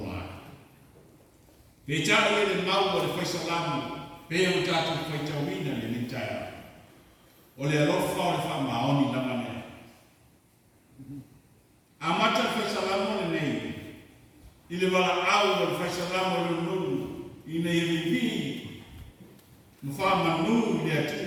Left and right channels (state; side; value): identical; both; correlation 1.00